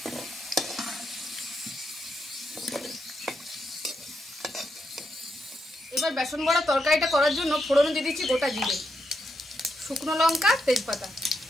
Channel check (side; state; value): both; normal; correlation 0.83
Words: এবার বেসন বড়া তরকারিটা করার জন্য ফোড়নে দিয়ে দিচ্ছি গোটা জিরে, শুকনো লঙ্কা, তেজপাতা।